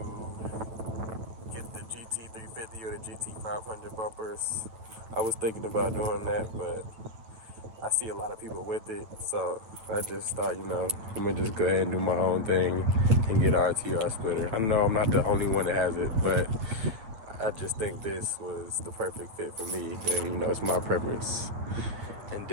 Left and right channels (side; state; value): left; late; 8.9 ms